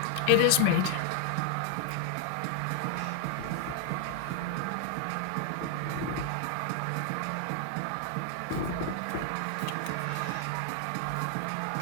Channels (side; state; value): both; different; correlation 0.00